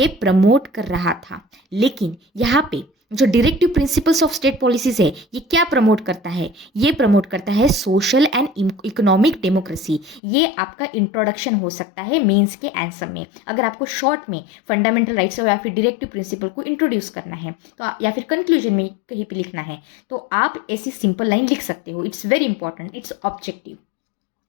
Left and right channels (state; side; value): drops out; right; at 10.2 s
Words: प्रमोट कर रहा था। लेकिन यहाँ पे जो directive principles of state policies है ये क्या प्रमोट करता है? ये प्रमोट करता है सोशल एंड इकोनॉमिक डेमोक्रेसी। ये आपका इंट्रोडक्शन हो सकता है मेंस के आंसर में। अगर आपको शॉर्ट में फंडामेंटल राइट्स या फिर डायरेक्टिव प्रिंसिपल को इंट्रोड्यूस करना है तो या फिर कंक्लूजन में कहीं पे लिखना है तो आप ऐसी सिंपल लाइन लिख सकते हो। It's very important, it's objective.